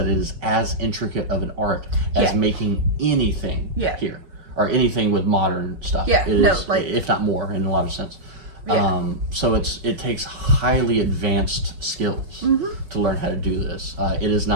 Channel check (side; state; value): left; late; 5.4 ms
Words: it is as intricate of an art as making anything here, or anything with modern stuff. It is, if not more, in a lot of sense. So it takes highly advanced skills to learn how to do this. It is